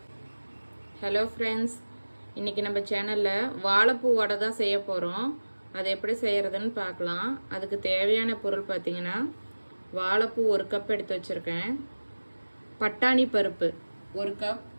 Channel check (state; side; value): inverted; both; correlation -1.00